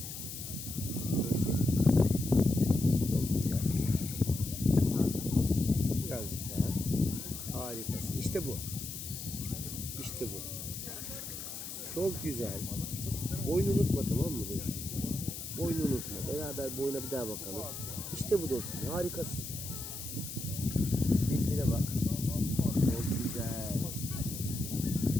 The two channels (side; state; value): left; noise; hiss, 8 dB below the sound